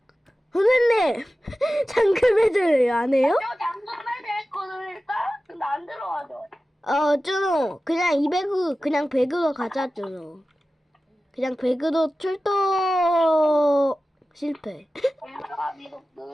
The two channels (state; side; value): normal; both; correlation 0.95